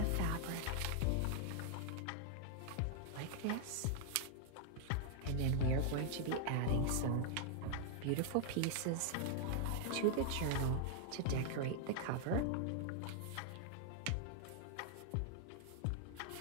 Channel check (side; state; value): both; different; correlation 0.00